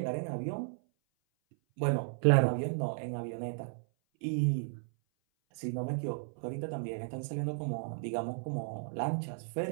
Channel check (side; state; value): left; silent; 55 dB below the other